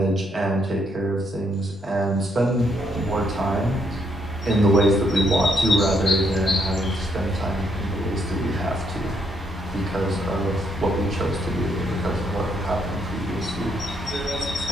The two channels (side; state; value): both; normal; correlation 0.74